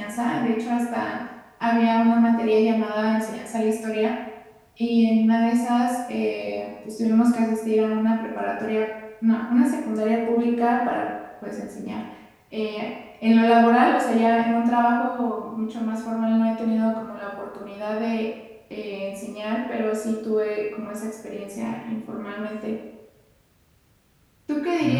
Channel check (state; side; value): identical; both; correlation 1.00